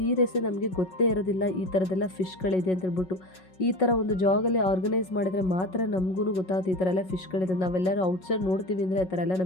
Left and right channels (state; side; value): late; right; 5.4 ms